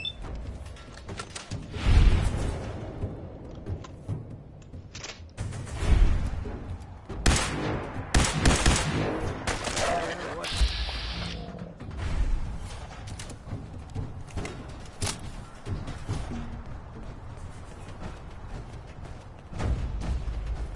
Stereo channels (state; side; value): identical; both; correlation 1.00